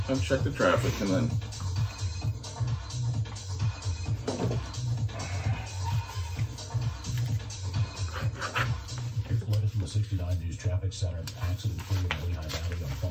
I'll check the traffic and then. Reported from the 69 News Traffic Center, accident free in the Lehigh Valley on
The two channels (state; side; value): identical; both; correlation 1.00